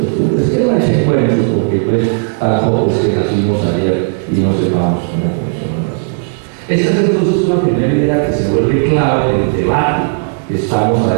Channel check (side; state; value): left; silent; 71 dB below the other